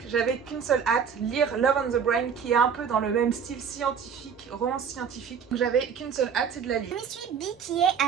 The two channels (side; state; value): left; quieter; 6.9 dB